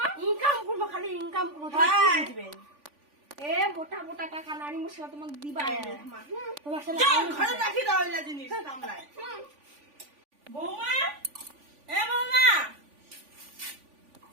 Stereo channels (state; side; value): late; left; 3.5 ms